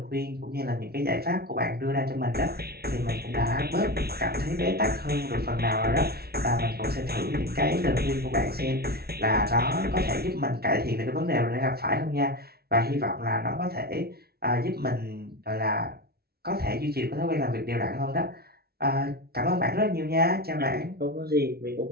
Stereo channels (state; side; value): late; left; 0.45 ms